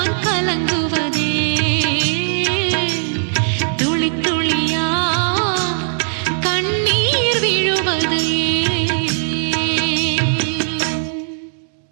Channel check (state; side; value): silent; left; digital silence